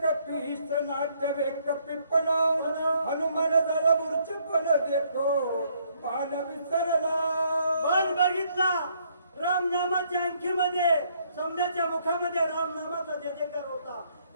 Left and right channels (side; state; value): both; inverted; correlation -0.68